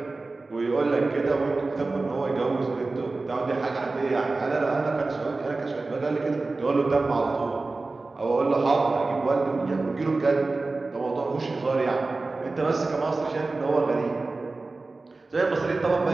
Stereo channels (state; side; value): quieter; left; 3.5 dB